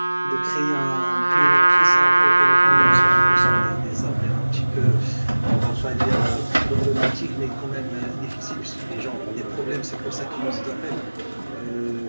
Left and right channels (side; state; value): both; inverted; correlation -1.00